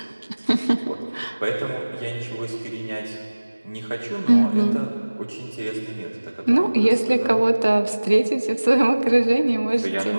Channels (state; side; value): inverted; both; correlation -1.00